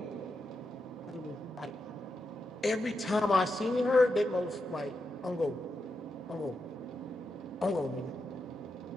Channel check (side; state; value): both; normal; correlation 0.86